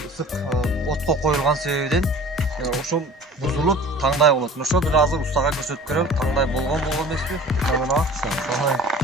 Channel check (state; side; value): normal; both; correlation 0.43